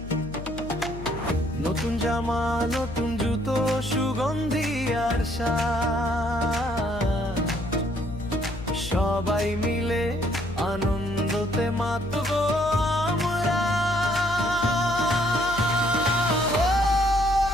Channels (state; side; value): noise; left; hum, 11 dB below the sound